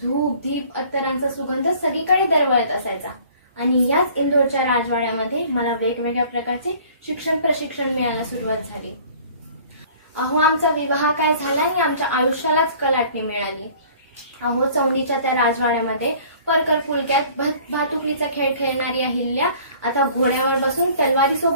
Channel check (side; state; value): both; inverted; correlation -0.51